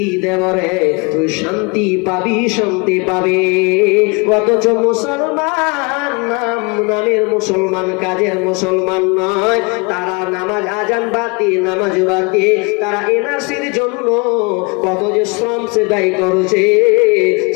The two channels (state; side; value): quieter; right; 29.9 dB